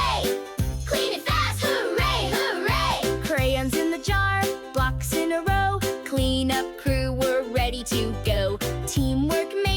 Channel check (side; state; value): both; identical; correlation 1.00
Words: Clean it fast, hooray, hooray. Crayons in the jar, blocks in a row. Cleanup crew, we're ready to go. Teamwork